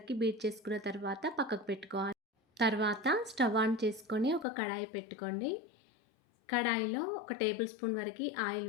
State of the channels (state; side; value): drops out; right; at 4.5 s